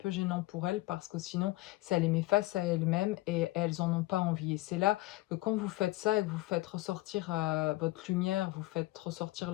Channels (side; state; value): right; quieter; 19.3 dB